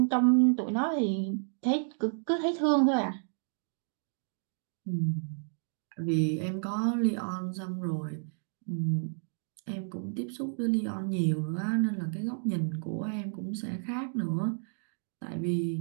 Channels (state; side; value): silent; left; digital silence